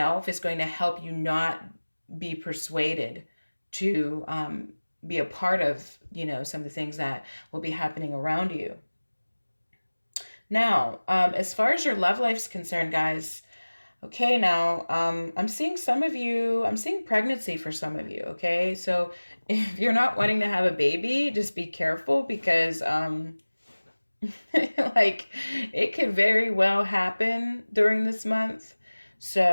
is going to help you not be persuaded to, be a part of, some of the things that will be happening around you. Now, as far as your love life's concerned, guys, okay, now, I'm seeing pregnancy for some of you, okay? So if you're not wanting to have a baby, just be careful because Like, it could very well happen during this month.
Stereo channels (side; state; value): both; inverted; correlation -1.00